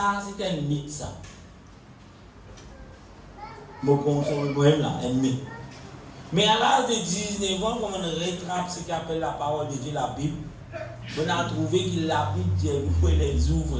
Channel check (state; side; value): identical; both; correlation 1.00